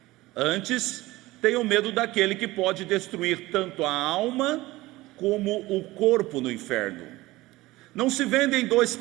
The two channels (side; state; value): left; quieter; 19.0 dB